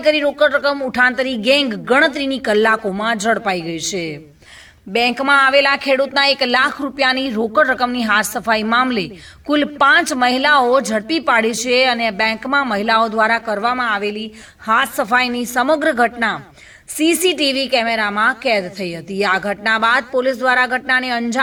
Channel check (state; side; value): identical; both; correlation 1.00